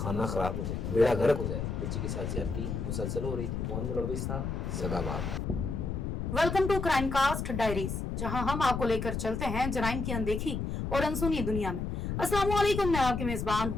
کھانا خراب ہو جائے, بیڑا غرق ہو جائے. بچی کے ساتھ زیادتی مسلسل ہو رہی تھی, کون ملوث تھا؟ سگا باپ. Welcome to crime cast diaries, جہاں ہم آپ کو لے کر چلتے ہیں جرائم کی اندیکھی اور انسونی دنیا میں. السلام علیکم, میں آپ کی میزبان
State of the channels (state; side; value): noise; left; rumble, 3 dB below the sound